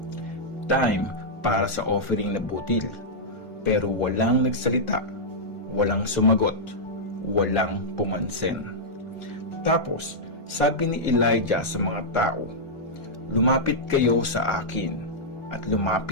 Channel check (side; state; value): right; late; 1.4 ms